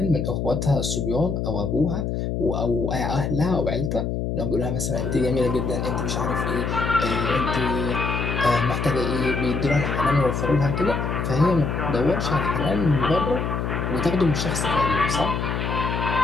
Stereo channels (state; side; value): noise; left; hum, 1 dB below the sound